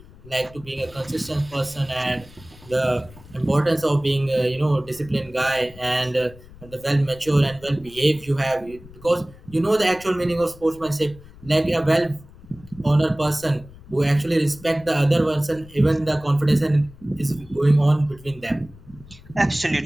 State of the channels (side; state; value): left; noise; rumble, 21 dB below the sound